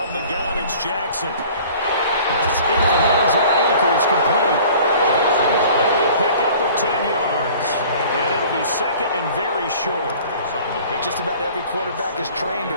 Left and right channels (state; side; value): inverted; both; correlation -0.48